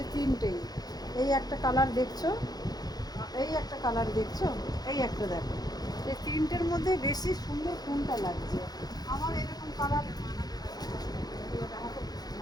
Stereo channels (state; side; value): late; right; 0.19 ms